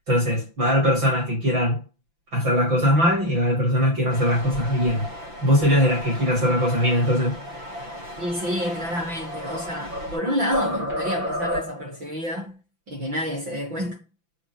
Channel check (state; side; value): late; left; 5.9 ms